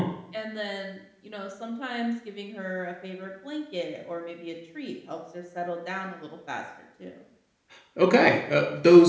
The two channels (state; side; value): identical; both; correlation 1.00